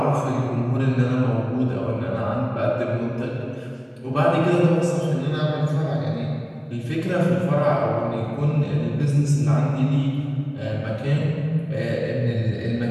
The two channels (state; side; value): identical; both; correlation 1.00